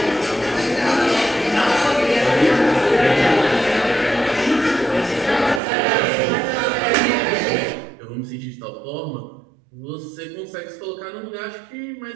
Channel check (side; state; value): left; drops out; at 5.6 s